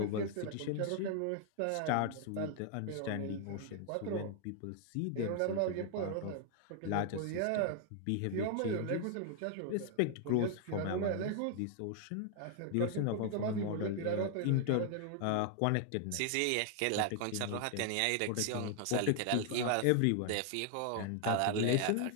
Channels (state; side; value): different; both; correlation 0.00